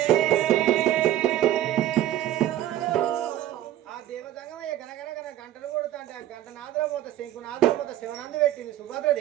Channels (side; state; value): left; quieter; 12.9 dB